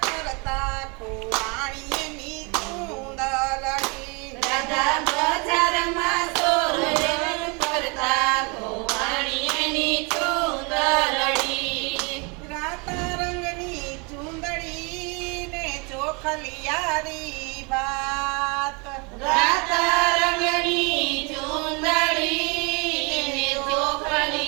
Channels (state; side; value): quieter; left; 31.1 dB